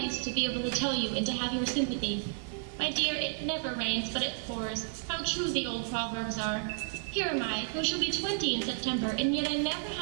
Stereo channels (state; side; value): silent; left; digital silence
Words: to be able to tell you and to have your sympathy. My dear, it never rains, but it pours. How true the old proverbs are. Here am I, who shall be 20 in September, and yet I never